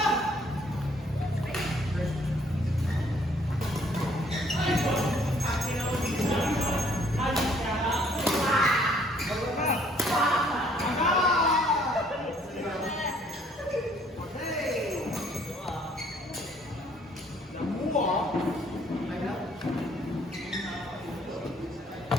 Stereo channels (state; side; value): normal; both; correlation 0.62